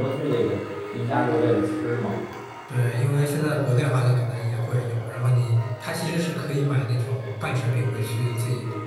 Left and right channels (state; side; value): identical; both; correlation 1.00